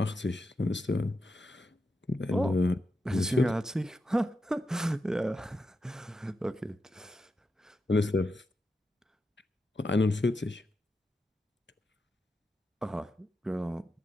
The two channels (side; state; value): both; normal; correlation 0.86